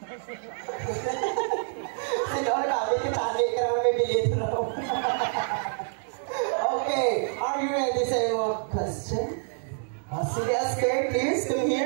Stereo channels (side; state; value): left; silent; digital silence